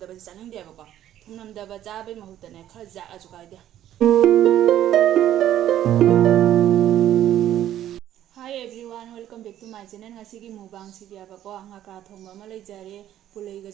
ꯆꯥꯅꯤꯡꯗꯦꯕꯀꯣ. ꯊꯨꯝ ꯅꯝꯗꯕ ꯆꯥꯕꯩ ꯃꯍꯨꯠꯇꯅꯦ ꯈꯔ ꯖꯥꯛꯑꯁꯨ ꯀꯥꯏꯗꯦ. Hi everyone, welcome back to my channel. Ngasigi mukbang sidiabako ngakra thongba ama leijare, pulaiga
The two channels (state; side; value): quieter; left; 11.9 dB